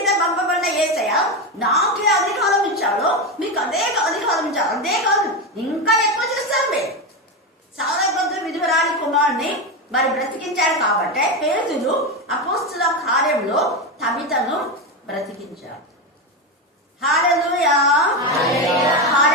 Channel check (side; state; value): both; normal; correlation 0.14